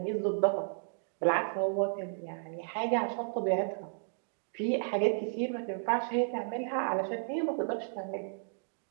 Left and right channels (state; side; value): silent; left; digital silence